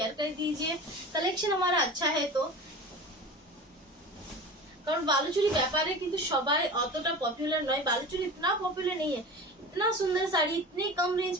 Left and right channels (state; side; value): normal; both; correlation 0.34